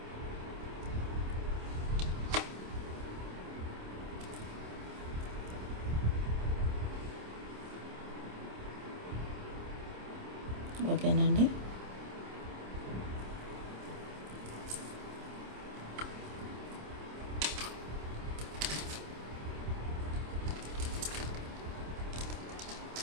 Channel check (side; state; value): left; late; 27 ms